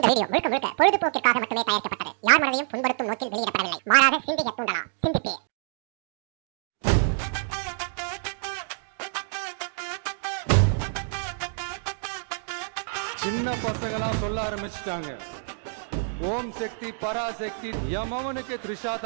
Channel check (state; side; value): silent; left; digital silence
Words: வீடியோ முழுக்க முழுக்க பொழுதுபோக்கிற்காக மட்டுமே தயாரிக்கப்பட்டது. யார் மனதையும் புண்படுத்தும் நோக்கில் வெளியிடப்படவில்லை. மாறாக சிந்திக்க தூண்டலாம். சிந்திப்பே. சின்ன பசங்களாம் சொல்ல ஆரம்பிச்சிட்டாங்க, ஓம் சக்தி பராசக்தி எமவனுக்கு